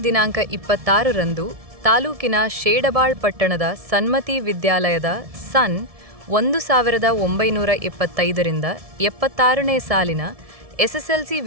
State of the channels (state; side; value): late; left; 1.7 ms